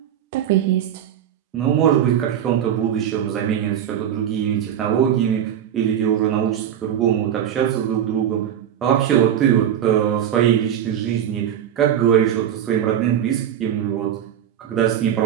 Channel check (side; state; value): left; quieter; 9.8 dB